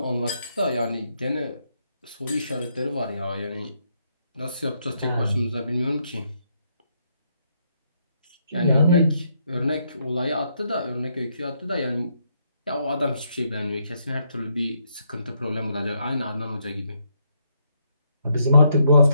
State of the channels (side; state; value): both; inverted; correlation -0.75